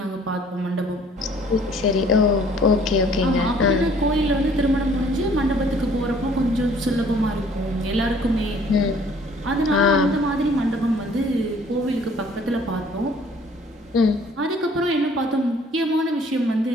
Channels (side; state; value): both; normal; correlation 0.57